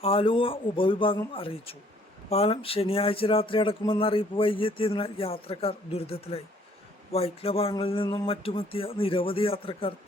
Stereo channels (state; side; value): normal; both; correlation 0.61